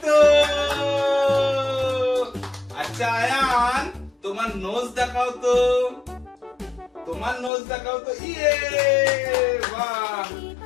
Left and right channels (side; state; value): right; drops out; at 7.5 s